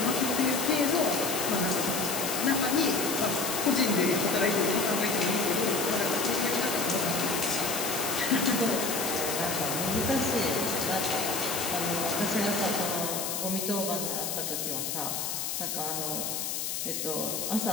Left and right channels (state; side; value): noise; left; hiss, 2 dB below the sound